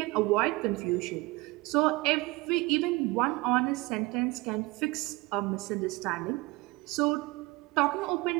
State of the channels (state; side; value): quieter; left; 22.5 dB